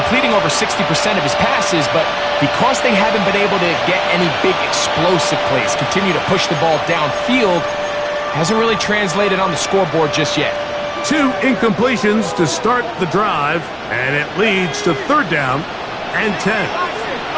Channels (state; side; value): identical; both; correlation 1.00